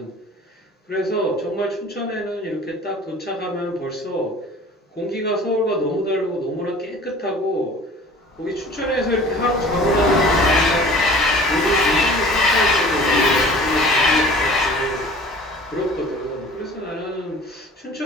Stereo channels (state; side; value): normal; both; correlation 0.45